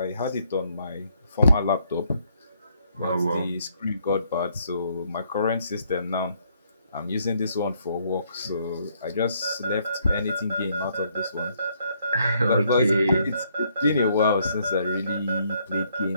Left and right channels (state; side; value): inverted; both; correlation -0.70